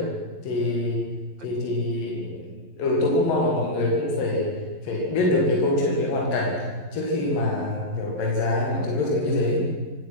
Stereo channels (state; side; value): late; left; 11 ms